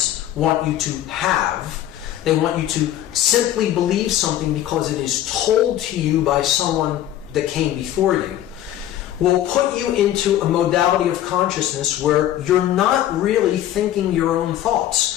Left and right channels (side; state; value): right; quieter; 12.3 dB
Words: want you to have. They want you to simply believe something because it is told to you by someone that came before you, will put you into a modality of consciousness where you're not really thinking your own